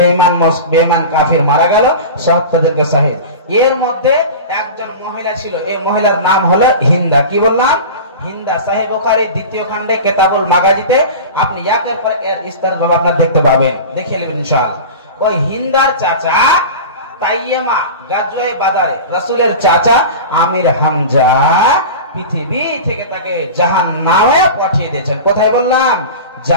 বেঈমান কাফির মারা গেল, ৭৭ জনকে শহীদ। এর মধ্যে একজন মহিলা ছিল, এই মহিলার নাম হলো হিন্দা। কি বললাম? হিন্দা। সহিহ বুখারী 2য় খণ্ডে কিতাবুল মাগাজিতে আপনি একের পর এক বিস্তারিত আপনারা দেখতে পাবেন, দেখে নেবেন ইনশাআল্লাহ। ওই হিন্দার চাচা তাইয়েমা গাজওয়ায়ে বাদারে রাসূলের চাচা আমির হামজা পৃথিবী থেকে তাকে জাহান্নামে পাঠিয়ে দিয়েছেন। কোথায় বললাম?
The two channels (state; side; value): inverted; both; correlation -0.31